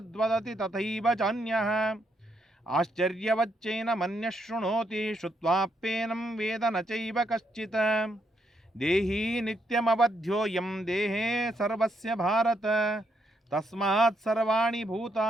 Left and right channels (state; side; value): normal; both; correlation 0.77